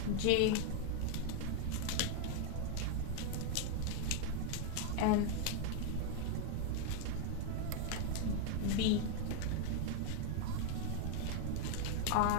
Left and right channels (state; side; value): different; both; correlation 0.01